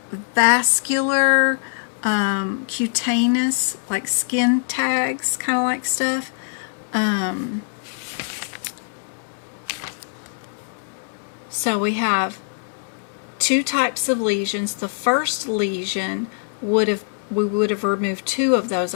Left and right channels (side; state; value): right; silent; digital silence